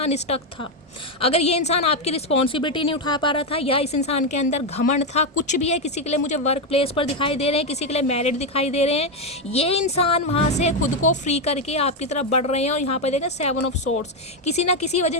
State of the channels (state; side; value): normal; both; correlation 0.06